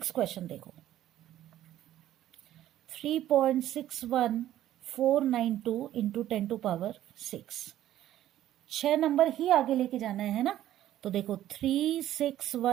क्वेश्चन देखो 3.61492 इंटू 10 टू पावर 6। 6 नंबर ही आगे लेके जाना है ना। तो देखो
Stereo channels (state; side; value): quieter; left; 12.8 dB